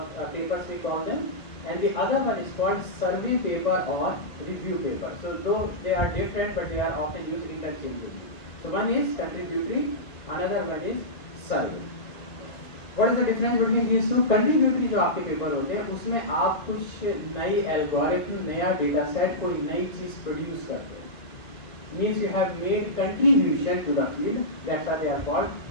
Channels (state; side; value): late; right; 2.0 ms